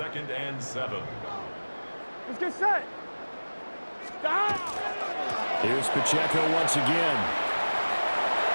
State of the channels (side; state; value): both; inverted; correlation -1.00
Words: and 7. Let's get set. Here's Pacheco once again.